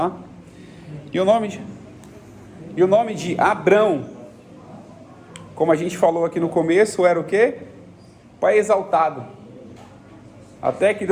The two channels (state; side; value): identical; both; correlation 1.00